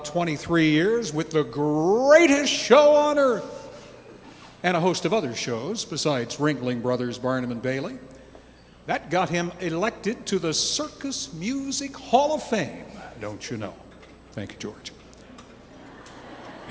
23 years with the greatest show on earth and a host of other shows besides Ringling Brothers, Barnum and Bailey. That got him elected to the Circus Music Hall of Fame, don't you know? Thank you, George.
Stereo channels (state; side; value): identical; both; correlation 1.00